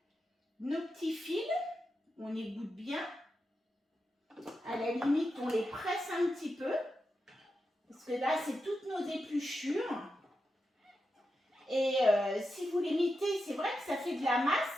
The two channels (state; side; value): normal; both; correlation 0.88